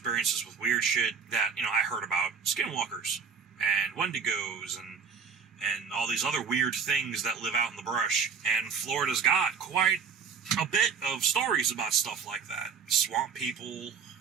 with weird shit that, I heard about skinwalkers and wendigos and all these other weird things that live out in the brush. And Florida's got quite a bit of stories about stuff like that. Swamp people,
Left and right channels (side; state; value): left; quieter; 6.0 dB